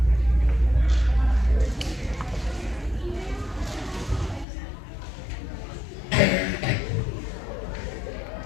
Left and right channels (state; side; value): drops out; right; at 4.5 s